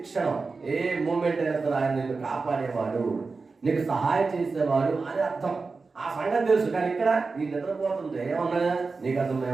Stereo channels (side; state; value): left; quieter; 4.2 dB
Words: క్షణం ఏ మూమెంట్ అయినా సరే ఆయన నిన్ను కాపాడేవాడు, నీకు సహాయం చేసేవాడు అని అర్థం. ఆ సంగతి తెలుసు. కానీ ఇక్కడ ఈ నిద్రపోతుంటే ఏమన్నా నీకు అర్థం,